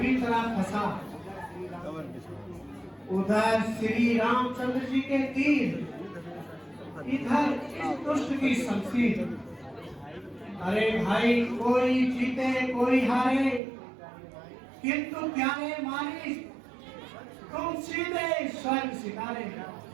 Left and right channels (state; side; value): drops out; left; at 13.6 s